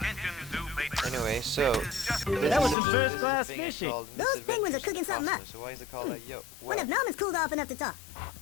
Anyway, so That was some this first is a class thing I fishing. called Those penguins are Misadventures in the cooking something up. Cosmos. So why is it called that? Yo, What well, if Norman's cooled off enough to talk?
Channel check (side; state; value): right; drops out; at 2.8 s